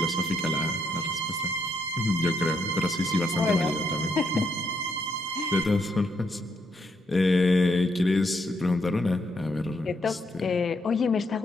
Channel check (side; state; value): both; normal; correlation 0.76